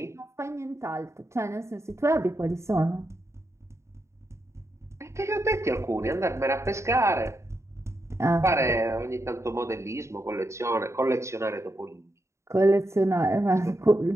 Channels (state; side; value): late; left; 0.14 ms